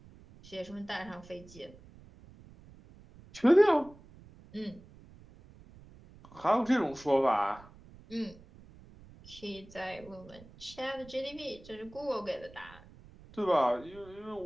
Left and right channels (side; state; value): right; noise; rumble, 21 dB below the sound